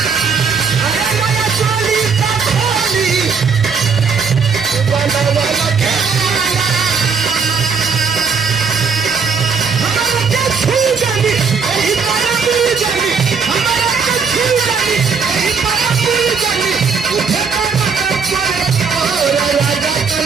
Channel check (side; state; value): left; quieter; 5.5 dB